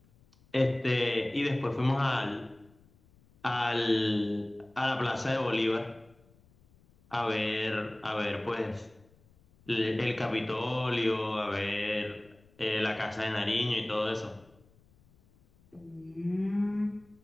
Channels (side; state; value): left; noise; rumble, 30 dB below the sound